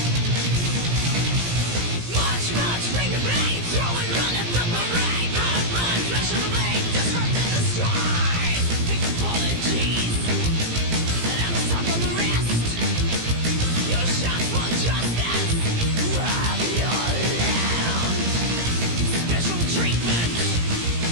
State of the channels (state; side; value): late; left; 17 ms